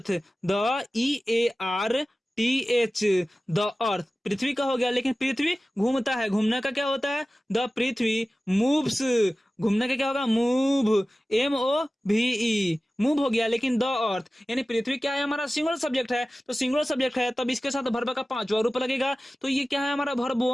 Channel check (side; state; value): both; normal; correlation 0.96